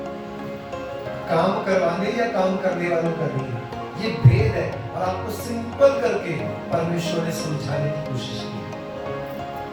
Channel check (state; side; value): identical; both; correlation 1.00